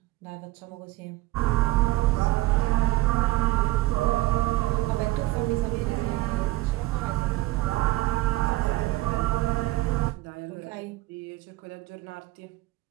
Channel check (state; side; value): quieter; left; 17.7 dB